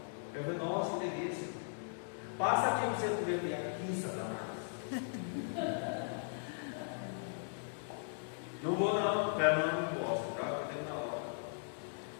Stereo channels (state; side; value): silent; right; digital silence